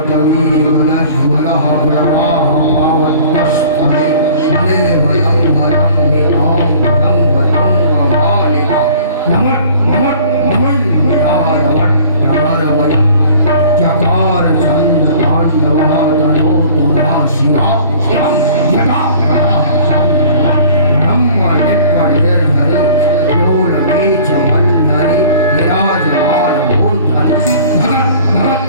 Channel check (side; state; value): both; inverted; correlation -0.48